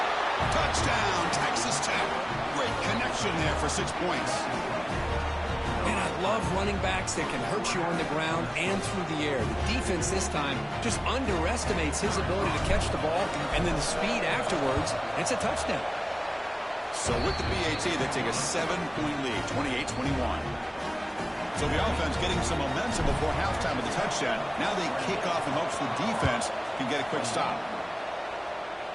Touchdown, Texas Tech. Great connection there for 6 points. And I love running backs that can hurt you on the ground and through the air. The defense this time just underestimates his ability to catch the ball, and then the speed afterwards. It's a touchdown. So with the BAT, they take a 7-point lead, 28-21. So the offense getting some momentum before halftime with the touchdown. Now they kick off in hopes the defense can get a quick stop.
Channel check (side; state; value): both; identical; correlation 1.00